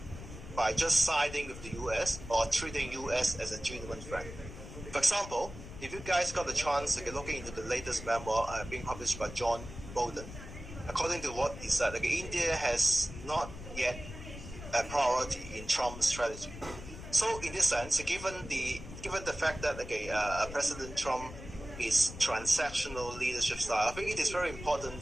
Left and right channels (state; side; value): noise; left; rumble, 12 dB below the sound